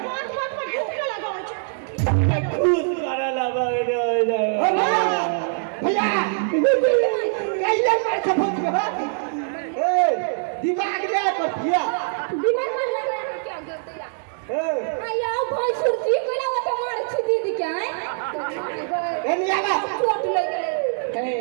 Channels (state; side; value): silent; left; digital silence